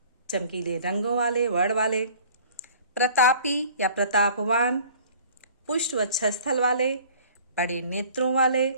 चमकीले रंगों वाले वर्ण वाले, प्रतापी या प्रतापवान, पुष्ट वक्षस्थल वाले, बड़े नेत्रों वाले,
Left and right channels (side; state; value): both; inverted; correlation -0.49